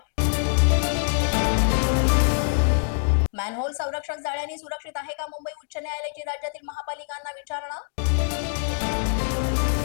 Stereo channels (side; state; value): right; silent; digital silence